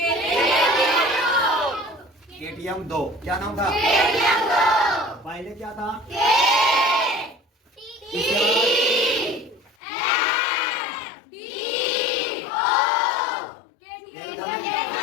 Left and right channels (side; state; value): right; drops out; at 9.8 s